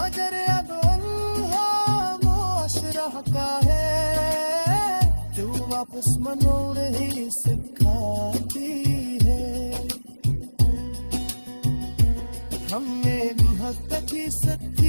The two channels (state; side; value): inverted; both; correlation -1.00